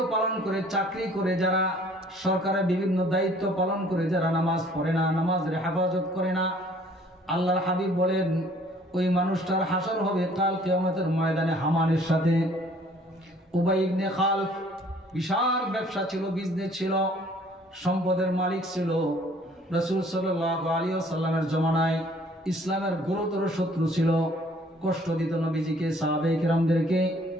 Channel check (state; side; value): normal; both; correlation 0.57